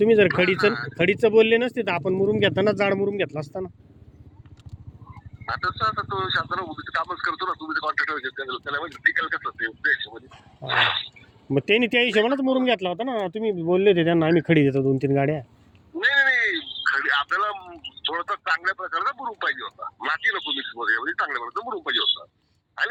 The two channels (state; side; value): identical; both; correlation 1.00